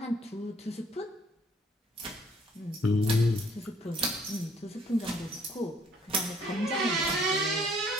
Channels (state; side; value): normal; both; correlation 0.62